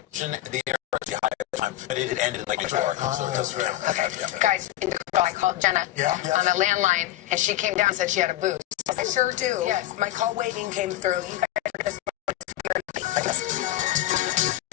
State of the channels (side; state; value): right; quieter; 14.5 dB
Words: to mention the air was high at the time, but it had ended in like New-York, so it doesn't really. Okay, guys, I called Jenna on the landline, and she came down and said she had a boost. I sure do. Yes. My call waiting came through. You guys are just